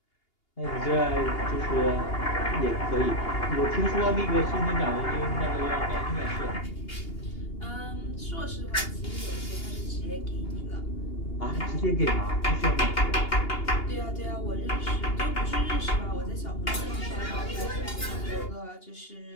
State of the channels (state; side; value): late; right; 2.8 ms